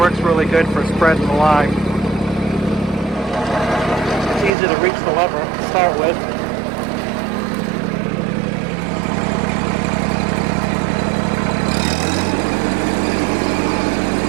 really good for spreading the lime. It's easy to reach the lever to start with.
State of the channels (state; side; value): drops out; left; at 4.5 s